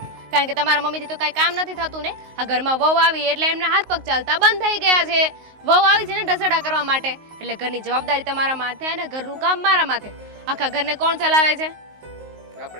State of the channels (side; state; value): left; late; 19 ms